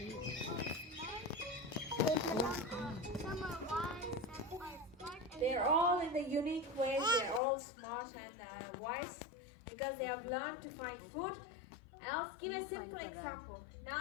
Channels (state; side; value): drops out; right; at 7.4 s